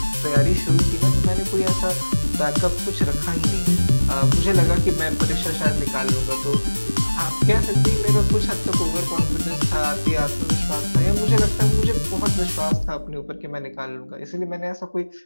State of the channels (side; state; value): both; inverted; correlation -1.00